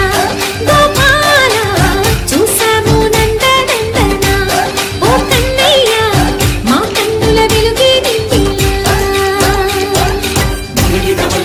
గోపాల చూసాము నందనందన ఓ కన్నయ్య మా కన్నుల వెలుగే నిండిలా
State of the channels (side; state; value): both; identical; correlation 1.00